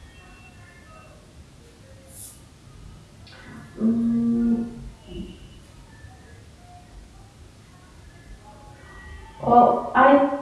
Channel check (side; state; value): both; identical; correlation 1.00